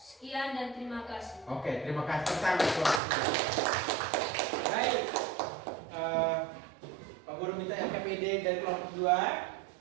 dan terima kasih. Oke, terima kasih pertama kelompok 3. Baik. Pak Guru minta LKPD dari kelompok 2.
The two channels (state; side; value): drops out; left; at 3.0 s